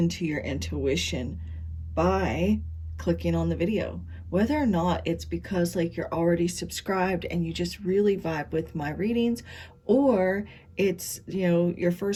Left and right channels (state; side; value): identical; both; correlation 1.00